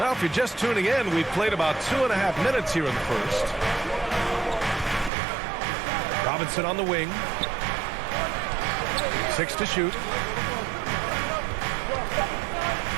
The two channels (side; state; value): left; drops out; at 5.1 s